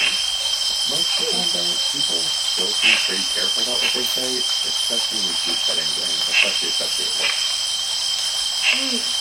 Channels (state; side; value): noise; left; rumble, 30 dB below the sound